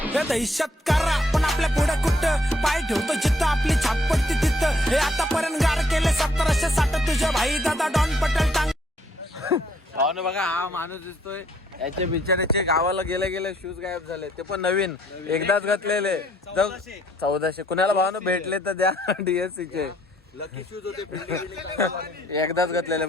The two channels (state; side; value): normal; both; correlation 0.66